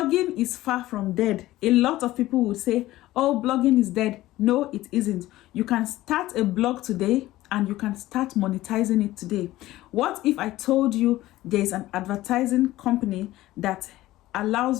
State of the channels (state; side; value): quieter; right; 16.3 dB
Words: is far from dead. A lot of people would say, oh, blogging is dead. No, it isn't. You can start a blog today and you can start monetizing it today. What if I told you there's an advertising company that